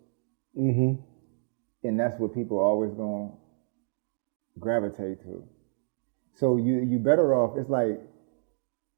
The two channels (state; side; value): silent; left; digital silence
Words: And that's what people are always going to gravitate to. So you better off, it's like